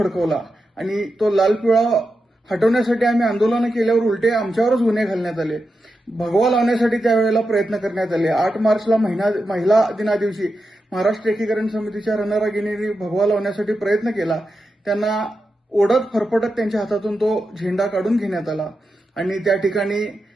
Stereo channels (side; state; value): both; normal; correlation 0.89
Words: आणि तो लाल पिवळा हटवण्यासाठी आम्ही आंदोलनं केल्यावर उलटे आमच्यावरच गुन्हे घालण्यात आले. भगवा लावण्यासाठी त्यावेळेला प्रयत्न करण्यात आले. 8 मार्चला महिला दिनादिवशी महाराष्ट्र एकीकरण समितीच्या रणरागिणींनी भगवा लावण्यासाठी प्रयत्न केला. त्यांना ओढत फरफटत त्यांच्या हातातून तो झेंडा काढून घेण्यात आला आणि त्या ठिकाणी